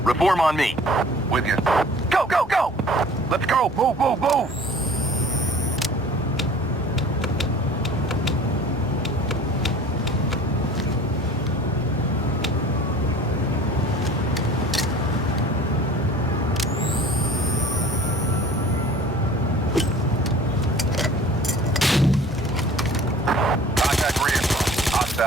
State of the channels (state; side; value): normal; both; correlation 0.46